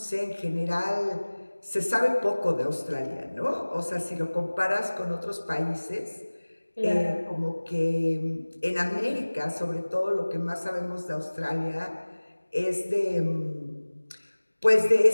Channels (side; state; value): both; inverted; correlation -1.00